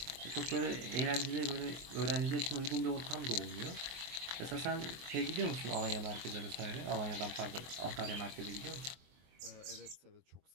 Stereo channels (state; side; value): late; left; 24 ms